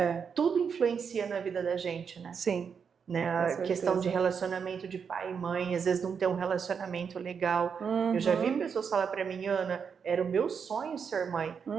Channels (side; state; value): left; quieter; 6.5 dB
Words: Tudo influencia na vida da gente, né? Sim. Né? A questão de relacionamento de pai e mãe, às vezes não tem um relacionamento legal. Eu já vi pessoas falar para mim, Ana, era o meu sonho ser mãe,